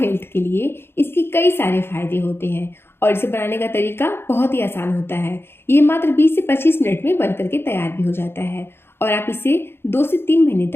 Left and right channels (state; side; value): late; right; 0.11 ms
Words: हेल्थ के लिए इसके कई सारे फायदे होते हैं और इसे बनाने का तरीका बहुत ही आसान होता है। ये मात्र 20 से 25 मिनट में बन करके तैयार भी हो जाता है और आप इसे 2 से 3 महीने